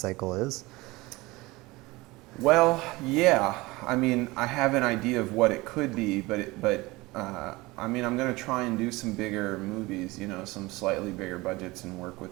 is? Well, yeah. I mean, I have an idea of what it could be, but I mean, I'm going to try and do some bigger movies, you know, some slightly bigger budgets and work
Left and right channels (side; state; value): left; quieter; 21.6 dB